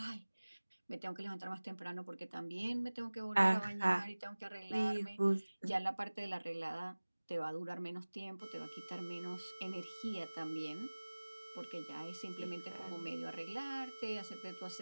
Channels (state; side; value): inverted; both; correlation -1.00